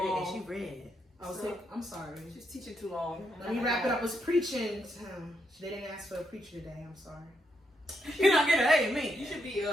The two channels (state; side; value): normal; both; correlation 0.79